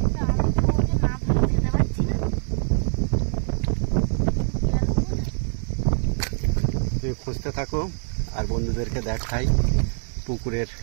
তুমি খুঁজতে থাকো, আর বন্ধুদেরকে দেখাই পুকুরের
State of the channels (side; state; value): left; silent; digital silence